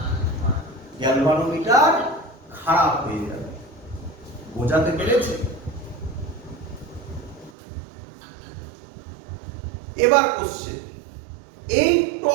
গ্যালভানোমিটার খারাপ হয়ে যাবে। বোঝাতে পেরেছি? এবার কোশ্চেন, এই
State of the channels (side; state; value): left; drops out; at 7.5 s